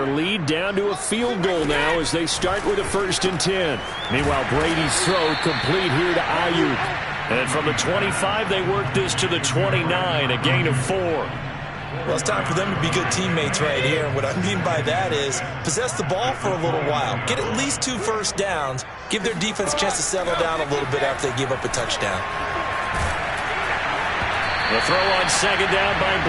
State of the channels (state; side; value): identical; both; correlation 1.00